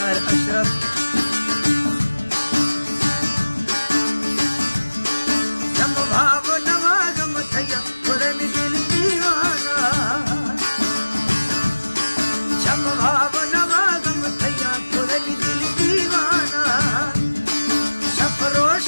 अशरफ। जम भाव नवागम थैया थोड़े में दिल दीवाना, जम भाव नवागम थैया थोड़े में दिल दीवाना।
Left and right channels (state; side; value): inverted; both; correlation -1.00